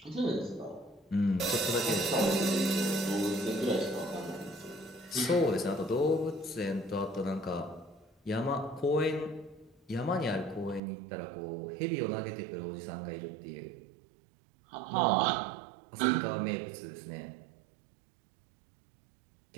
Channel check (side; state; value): left; drops out; at 10.8 s